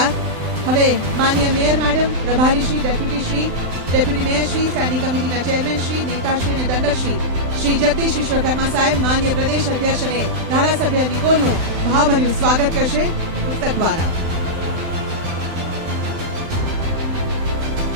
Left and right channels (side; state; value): left; late; 12 ms